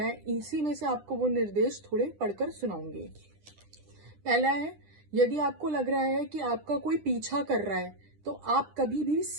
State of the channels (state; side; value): late; left; 9.9 ms